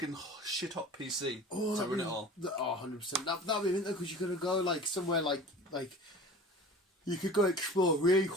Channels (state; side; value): normal; both; correlation 0.40